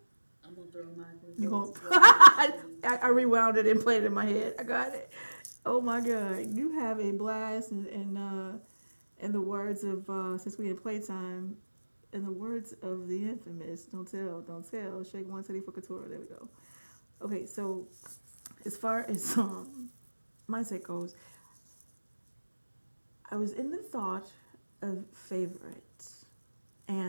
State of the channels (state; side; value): inverted; both; correlation -1.00